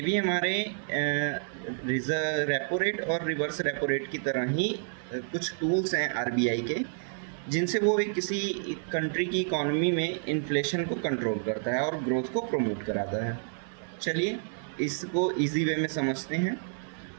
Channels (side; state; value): left; silent; 58 dB below the other